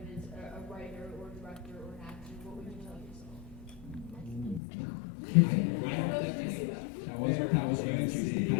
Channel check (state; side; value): drops out; right; at 4.6 s